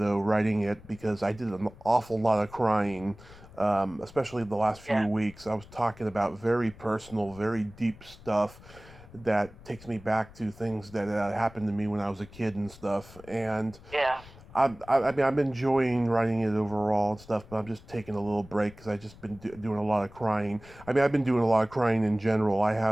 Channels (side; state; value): left; noise; rumble, 20 dB below the sound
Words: writing it because I did an awful lot of crying, especially the last few Yeah. weeks. I was talking about very personal, very deep stuff that takes me back to things that happened to me when I was a kid and stuff. And Yeah. I mean, I'm enjoying writing it overall and stuff, but I'm just taking a little break because I've just been doing a lot of crying. I mean, I've been doing a lot of crying in general. I